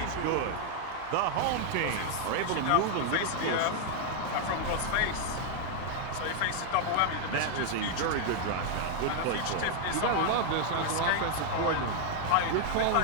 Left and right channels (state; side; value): different; both; correlation 0.00